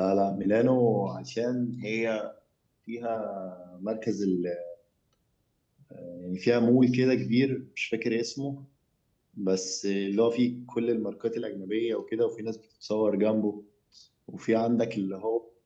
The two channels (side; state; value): both; identical; correlation 1.00